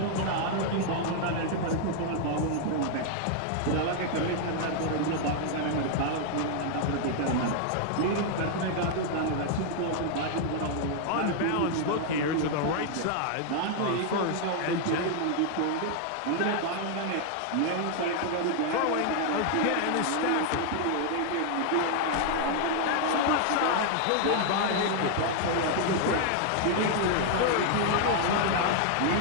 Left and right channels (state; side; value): different; both; correlation 0.00